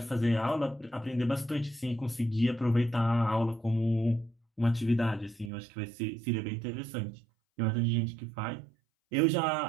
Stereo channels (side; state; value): left; drops out; at 5.5 s